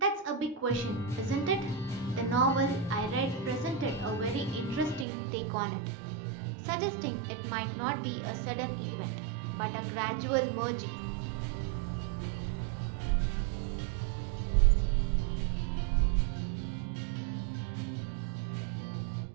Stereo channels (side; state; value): left; drops out; at 5.1 s